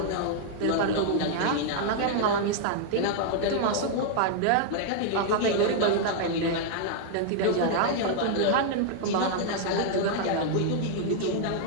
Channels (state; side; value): different; both; correlation -0.01